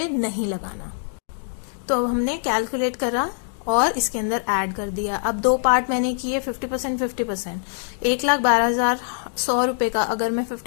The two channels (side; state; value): right; silent; digital silence